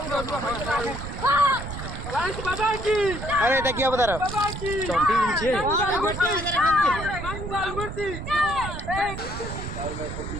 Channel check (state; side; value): noise; right; rumble, 7 dB below the sound